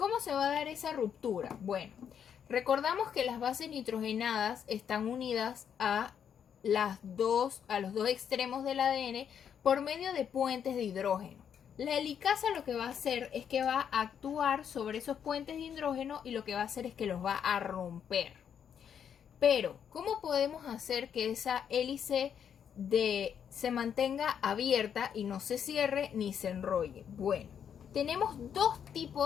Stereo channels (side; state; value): right; quieter; 8.2 dB